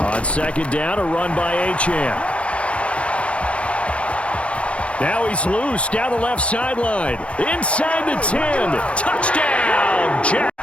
On second down, a run by Achane. Now he's loose down the left sideline. Inside the 10. Touchdown, Jags.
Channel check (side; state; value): right; late; 0.061 ms